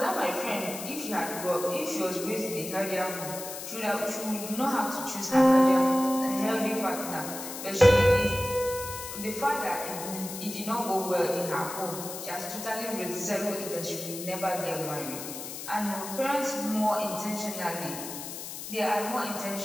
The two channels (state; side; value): noise; left; hiss, 9 dB below the sound